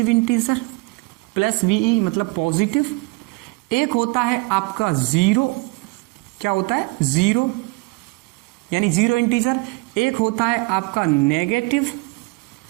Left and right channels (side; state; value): left; quieter; 26.4 dB